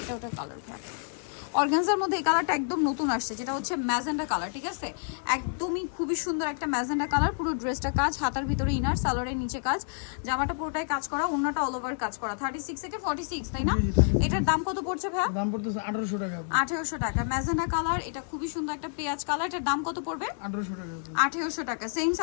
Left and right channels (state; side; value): silent; right; digital silence